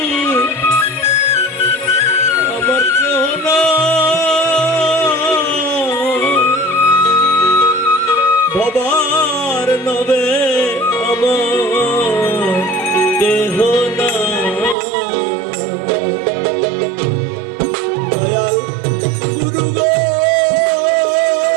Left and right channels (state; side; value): drops out; left; at 14.8 s